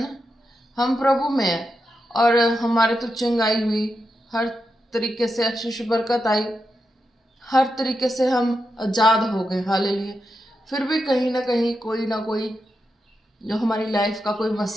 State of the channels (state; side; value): normal; both; correlation 0.87